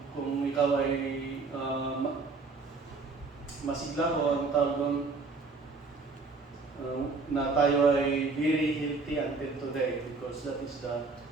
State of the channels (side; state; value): left; quieter; 4.0 dB